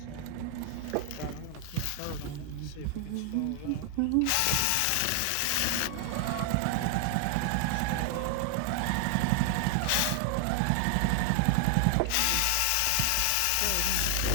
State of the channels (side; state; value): both; different; correlation 0.00